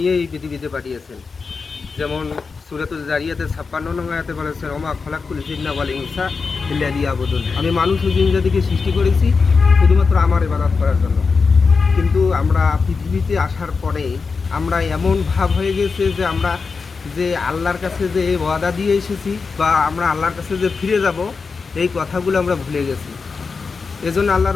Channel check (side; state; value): right; quieter; 4.8 dB